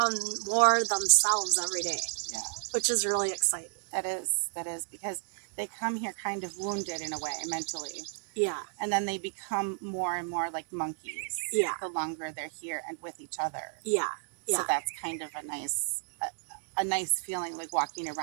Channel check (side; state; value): left; silent; digital silence